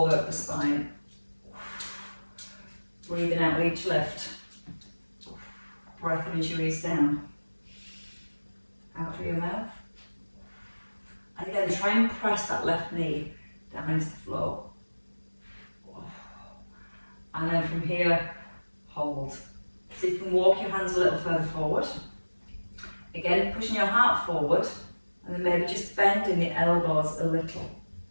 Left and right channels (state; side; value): inverted; both; correlation -1.00